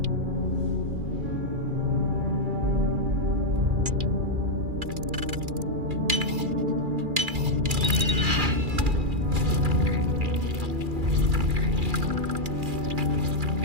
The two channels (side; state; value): left; late; 2.4 ms